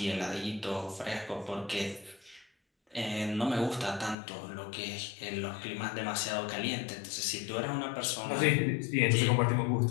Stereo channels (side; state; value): right; drops out; at 4.2 s